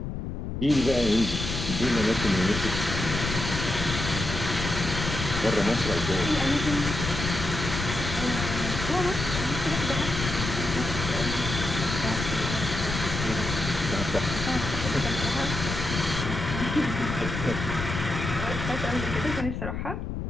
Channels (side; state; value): left; noise; rumble, 4 dB below the sound